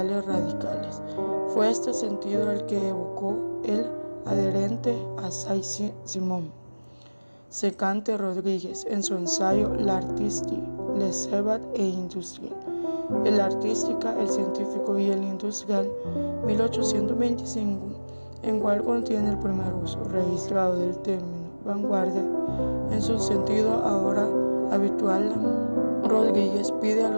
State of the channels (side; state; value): both; inverted; correlation -1.00